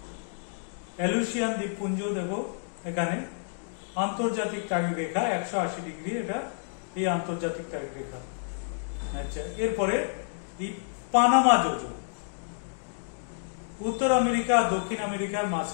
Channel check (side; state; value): right; silent; digital silence